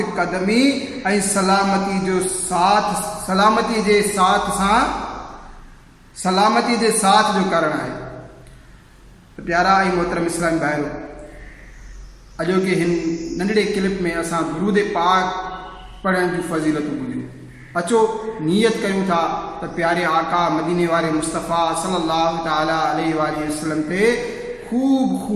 कदमी ऐं सलामती जे साथ जो कारण आहे। प्यारा ऐं मोहतरम इस्लामी भाइरो, अॼोके हिन नंढड़े क्लिप में असां दुरूद पाक पढ़ण जूं फज़ीलतूं ॿुधियूं। अचो नियत कयूं था त प्यारे आका मदीने वारे मुस्तफ़ा सल्लल्लाहु ताला अलैहि वसल्लम ते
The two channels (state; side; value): identical; both; correlation 1.00